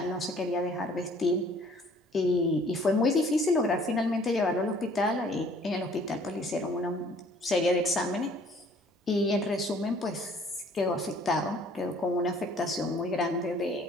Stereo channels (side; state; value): both; normal; correlation 0.57